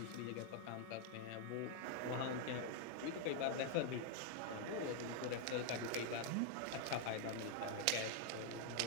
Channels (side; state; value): both; different; correlation 0.00